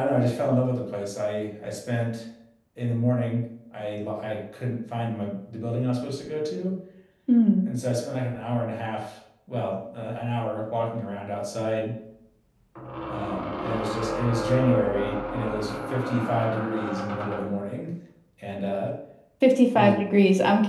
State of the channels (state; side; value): identical; both; correlation 1.00